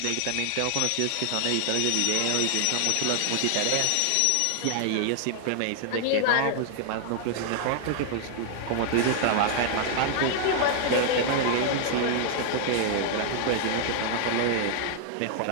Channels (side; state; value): both; different; correlation 0.00